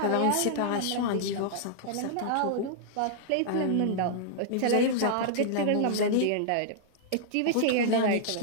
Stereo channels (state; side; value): different; both; correlation -0.01